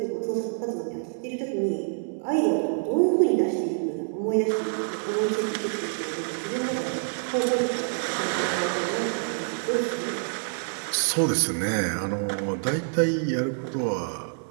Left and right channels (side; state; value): left; silent; 60 dB below the other